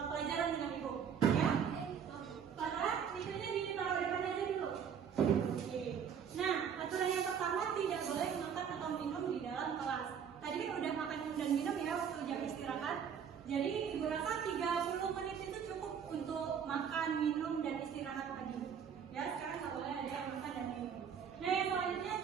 pelajaran dengan Ibu. Ya? Para misalnya ditaruh di depan aja dulu. Oke. Nah, aturan yang pertama tidak boleh makan atau minum di dalam kelas. Tadi kan udah makan dan minum ya waktu jam istirahat. Jadi Ibu rasa 30 menit itu cukup untuk makan, minum, dan istirahat pagi. Ya, sekarang nggak boleh ada yang makan dan minum. Nah, yang selanjutnya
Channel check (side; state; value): left; quieter; 7.6 dB